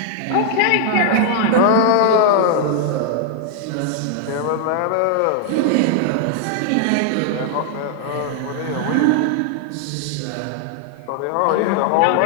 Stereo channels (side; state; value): both; different; correlation 0.00